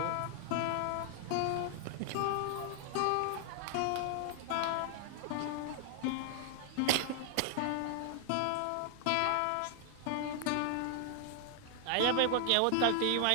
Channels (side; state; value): both; different; correlation 0.00